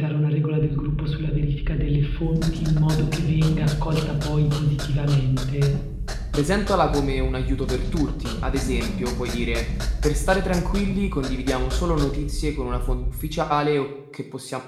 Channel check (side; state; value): both; identical; correlation 1.00